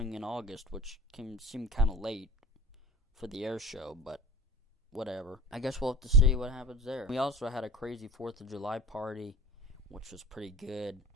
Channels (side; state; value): both; normal; correlation 0.37